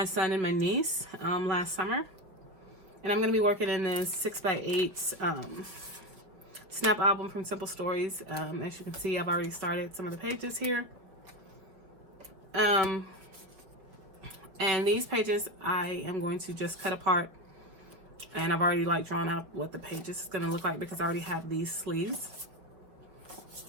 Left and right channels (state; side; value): late; left; 5.5 ms